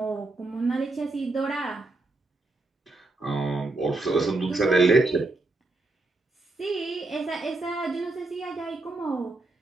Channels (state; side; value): quieter; left; 3.1 dB